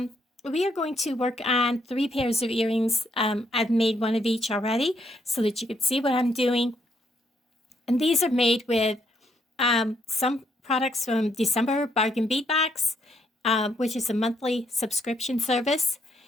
We are going to work on 3 pairs of earrings. I've made one of each already so that you can see what I'm doing. And these are made with some products from December Bargain Bead Box, which is a monthly subscription service.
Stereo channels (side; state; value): both; normal; correlation 0.74